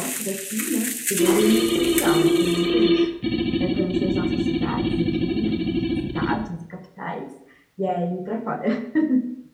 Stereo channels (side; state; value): both; identical; correlation 1.00